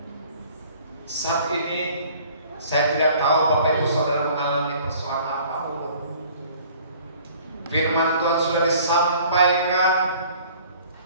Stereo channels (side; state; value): both; inverted; correlation -0.52